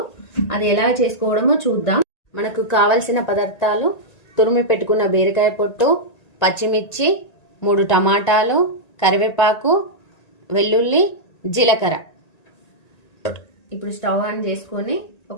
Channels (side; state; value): right; late; 1.9 ms